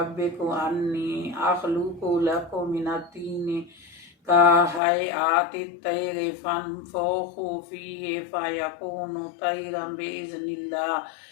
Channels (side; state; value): right; drops out; at 4.8 s